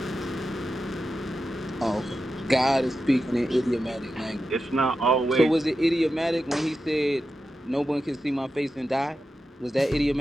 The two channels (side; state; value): both; normal; correlation 0.91